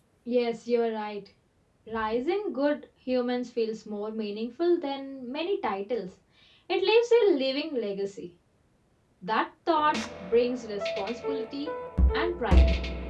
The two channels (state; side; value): identical; both; correlation 1.00